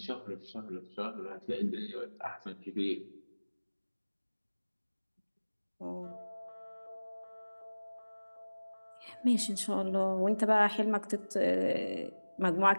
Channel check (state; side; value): inverted; both; correlation -1.00